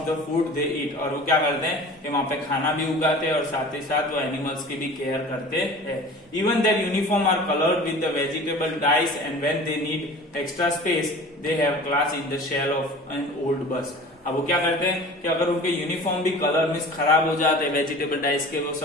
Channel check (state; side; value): normal; both; correlation 0.41